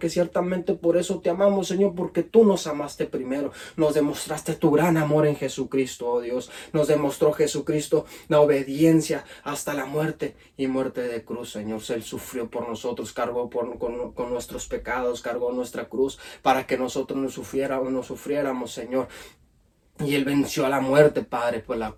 ciertamente por eso te amamos, Señor, porque tú nos amaste primero, nos demostraste tu gran amor en Jesucristo, oh Dios, nos demostró Jesucristo la obediencia hasta la muerte y muerte de cruz, Señor. Él sufrió por nosotros, cargó con nuestros pecados, cargó nuestra cruz para que nosotros no sufriéramos, Señor. Y Él venció a la muerte, Padre, por la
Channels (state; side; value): identical; both; correlation 1.00